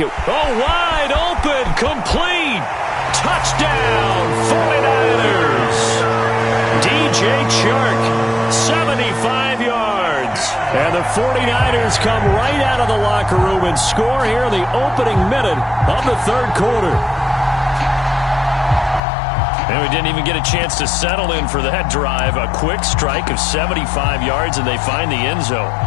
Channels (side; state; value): right; drops out; at 19.0 s